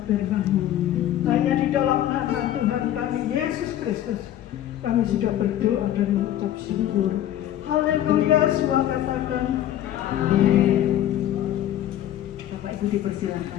firman-Mu. Hanya di dalam nama Tuhan kami Yesus Kristus kami sudah berdoa dan mengucap syukur. Haleluya, semua katakan amin. Bapak Ibu dipersilakan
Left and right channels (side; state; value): right; quieter; 12.1 dB